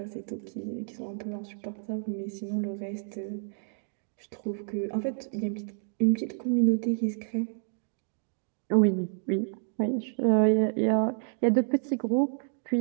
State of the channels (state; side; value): silent; left; 58 dB below the other